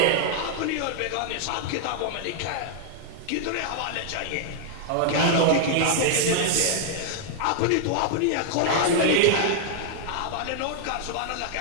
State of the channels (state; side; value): different; both; correlation -0.01